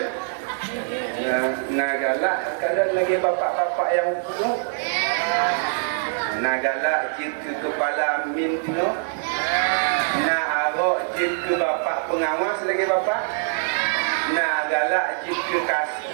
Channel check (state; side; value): silent; left; 58 dB below the other